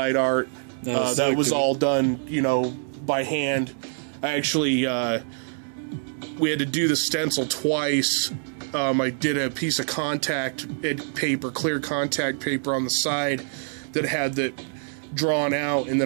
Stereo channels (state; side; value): silent; left; 62 dB below the other